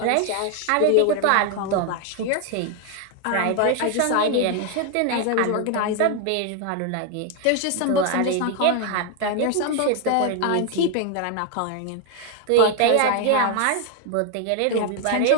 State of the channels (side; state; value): both; different; correlation 0.01